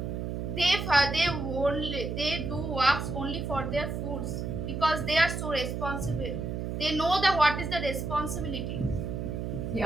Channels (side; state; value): right; noise; hum, 3 dB below the sound